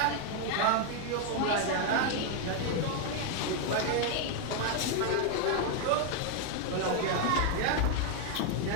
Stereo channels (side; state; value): both; different; correlation 0.00